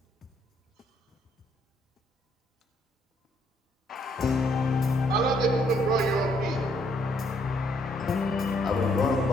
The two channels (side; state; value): both; normal; correlation 0.69